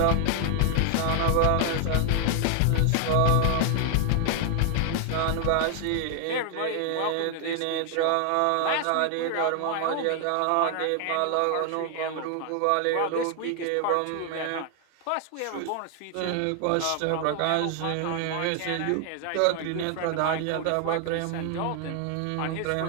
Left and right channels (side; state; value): both; different; correlation 0.00